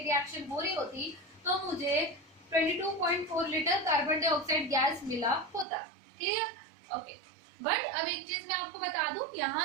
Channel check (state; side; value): drops out; left; at 5.7 s